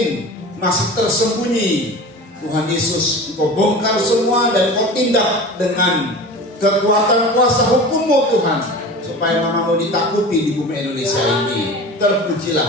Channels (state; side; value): normal; both; correlation 0.35